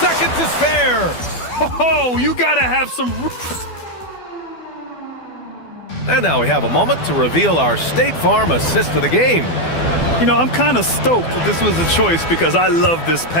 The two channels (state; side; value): late; right; 12 ms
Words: to spare. Oh, you gotta have some... And now we have a moment to reveal our State Farm assist of the game. You know, I'm kind of stoked that this was a choice because I love this